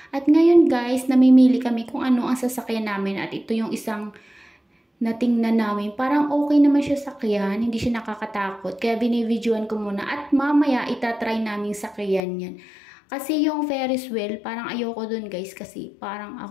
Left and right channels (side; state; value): right; drops out; at 12.2 s